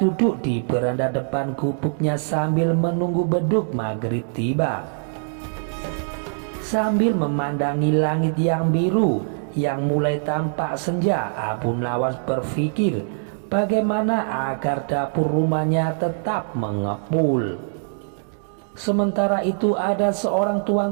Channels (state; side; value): silent; left; digital silence